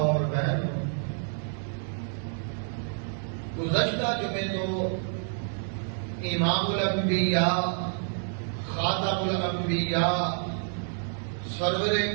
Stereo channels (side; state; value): left; silent; 59 dB below the other